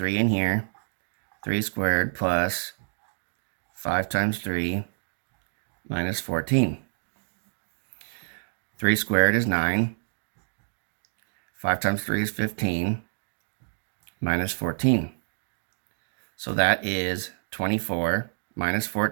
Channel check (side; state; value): left; silent; digital silence